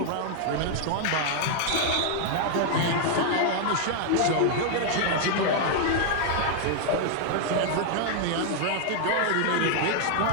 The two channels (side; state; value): both; different; correlation 0.00